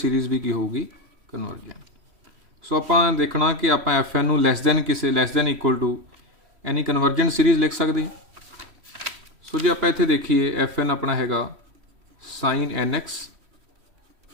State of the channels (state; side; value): late; left; 3.1 ms